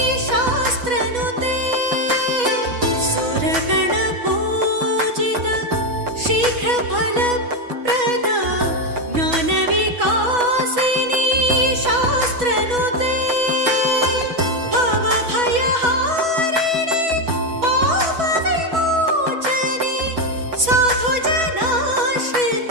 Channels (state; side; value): late; left; 6.1 ms